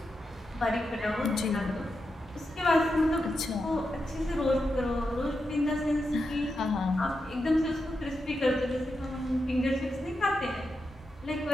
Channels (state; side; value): normal; both; correlation 0.87